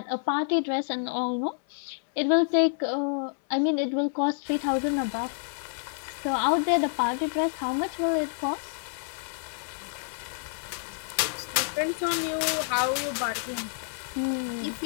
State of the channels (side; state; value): right; silent; 59 dB below the other